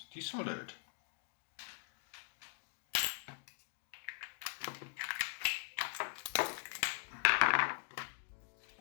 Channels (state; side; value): silent; right; digital silence